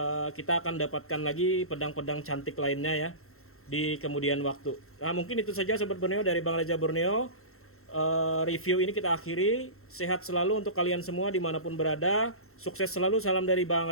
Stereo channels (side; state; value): right; late; 0.62 ms